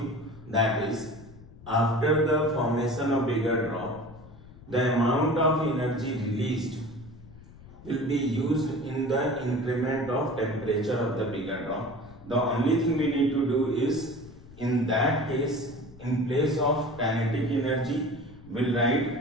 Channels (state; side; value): noise; left; rumble, 19 dB below the sound